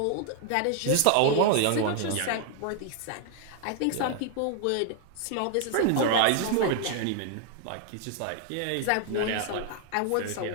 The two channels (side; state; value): both; different; correlation 0.00